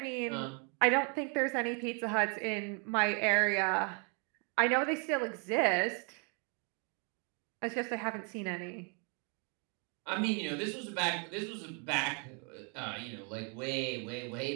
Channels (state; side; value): quieter; left; 36.8 dB